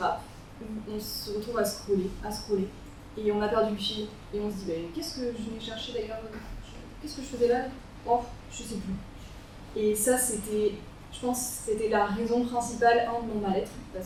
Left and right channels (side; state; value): both; identical; correlation 1.00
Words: où on se retrouve à scroller, et on a perdu le fil, et on se dit qu'est-ce que je venais chercher d'ailleurs, qu'est-ce que je faisais là? Oh, je sais plus. Et ça, je pense que c'était la raison principale de mon mal-être,